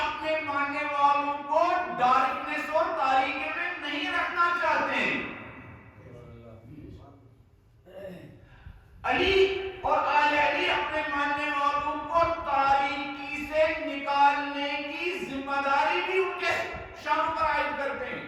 ماننے والوں کو ڈارکنس اور تاریکی میں نہیں رکھنا چاہتے ہیں. علی اور آل علی اپنے ماننے والوں کو تاریکی سے نکالنے کی ذمہ داری بھی ان کے شان پر عائد کرتے ہیں.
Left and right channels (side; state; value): both; identical; correlation 1.00